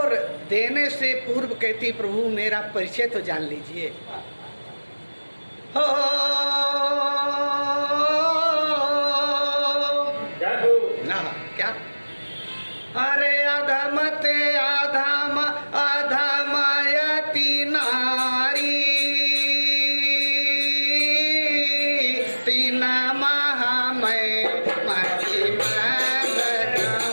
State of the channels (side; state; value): both; inverted; correlation -1.00